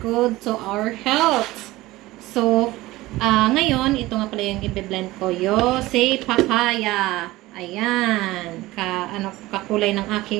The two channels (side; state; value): left; quieter; 18.5 dB